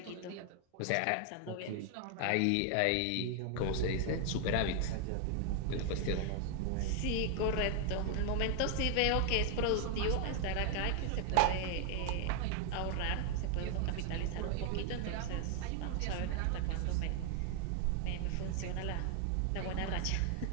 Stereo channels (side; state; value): both; different; correlation 0.00